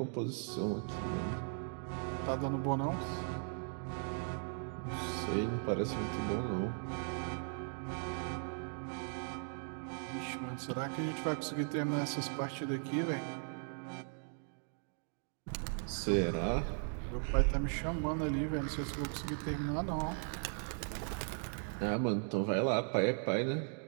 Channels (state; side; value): silent; left; 52 dB below the other